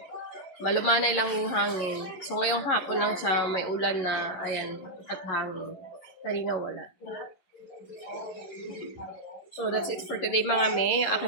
Malumanay lang yung hangin. So, ngayong hapon lang siya may ulan na, ayan, at hangin. Kanina wala. So, that's it for today mga me. Yung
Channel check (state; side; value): late; right; 11 ms